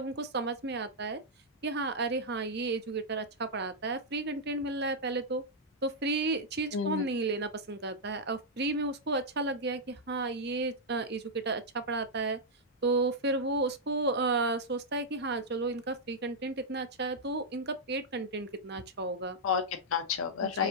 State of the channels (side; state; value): both; normal; correlation -0.06